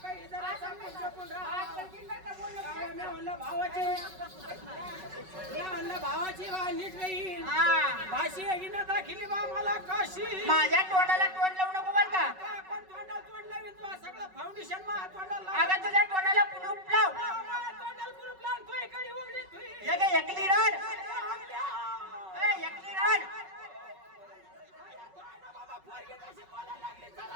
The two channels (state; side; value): late; left; 5.3 ms